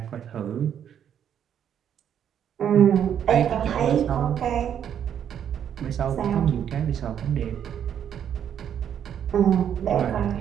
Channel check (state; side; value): quieter; left; 9.1 dB